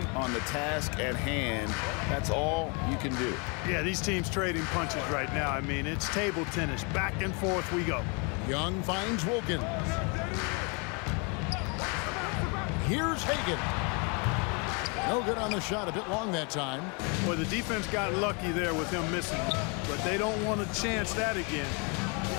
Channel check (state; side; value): quieter; right; 33.7 dB